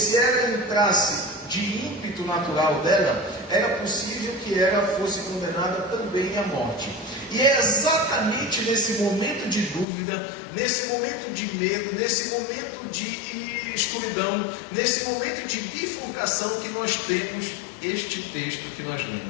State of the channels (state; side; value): drops out; right; at 9.9 s